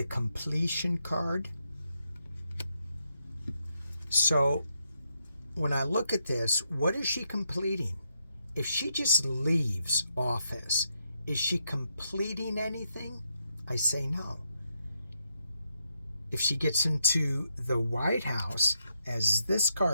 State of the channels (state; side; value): inverted; both; correlation -0.81